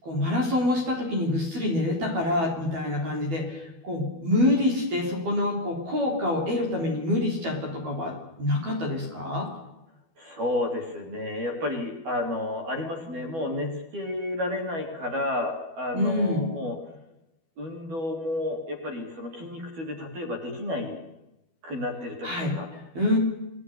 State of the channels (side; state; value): left; late; 12 ms